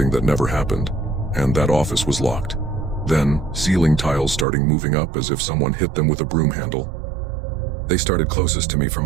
that never happened. And that office was locked. Then, ceiling tiles starting moving up as if someone hit them with a broom handle. They started closest to me from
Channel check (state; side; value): drops out; left; at 4.5 s